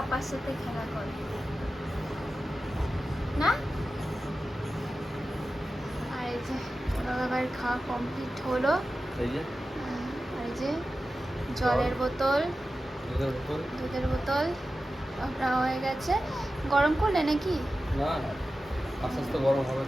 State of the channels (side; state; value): both; normal; correlation 0.94